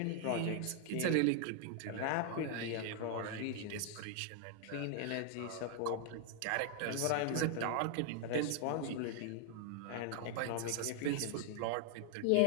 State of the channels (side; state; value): both; different; correlation 0.00